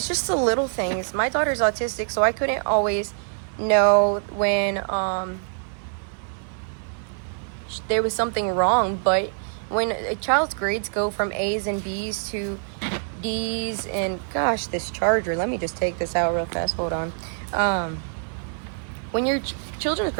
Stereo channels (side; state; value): left; silent; 62 dB below the other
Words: just the little things. My daughter's autistic, so I couldn't always know when there was something wrong. But when a child's grades go from A's and B's to D's, and gosh, this charger, let me just take this out real fast, hold on. When your children's